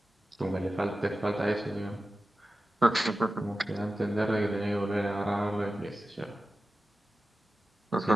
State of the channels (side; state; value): both; normal; correlation 0.94